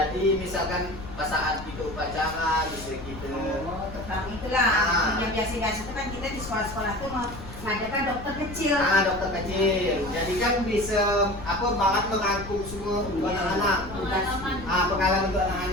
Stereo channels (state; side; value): noise; left; rumble, 13 dB below the sound